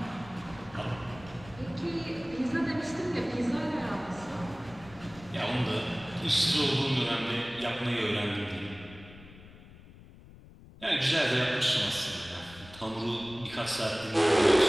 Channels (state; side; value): noise; left; rumble, 20 dB below the sound